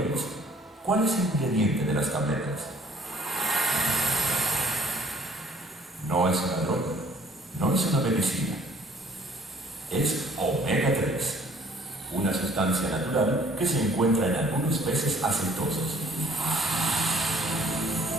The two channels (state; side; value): normal; both; correlation 0.58